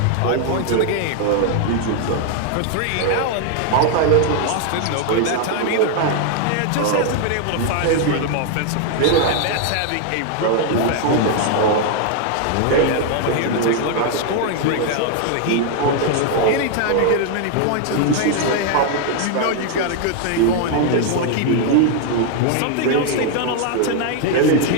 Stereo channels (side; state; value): both; different; correlation 0.00